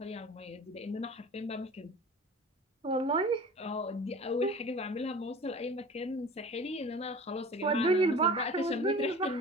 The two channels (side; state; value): both; normal; correlation 0.39